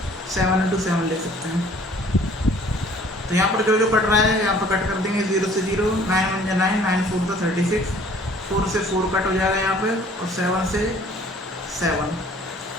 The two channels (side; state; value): both; normal; correlation 0.54